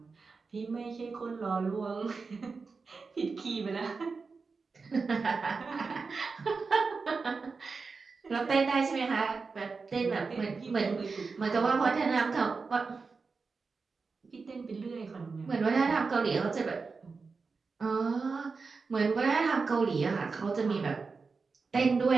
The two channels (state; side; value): quieter; left; 4.6 dB